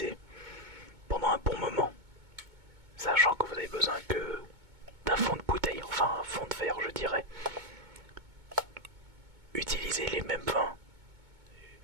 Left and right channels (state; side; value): late; left; 2.2 ms